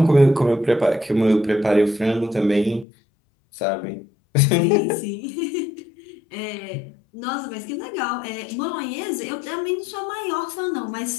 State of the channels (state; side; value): drops out; right; at 2.9 s